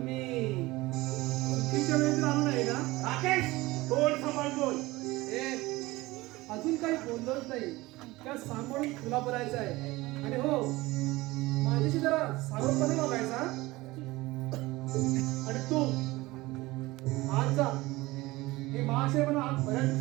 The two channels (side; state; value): left; quieter; 20.2 dB